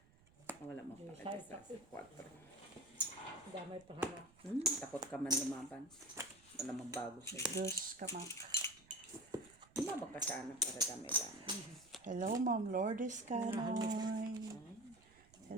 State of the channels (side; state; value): right; noise; rumble, 27 dB below the sound